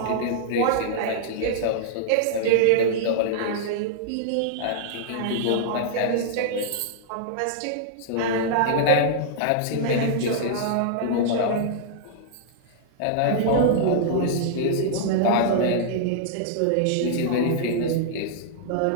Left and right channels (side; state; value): both; different; correlation -0.01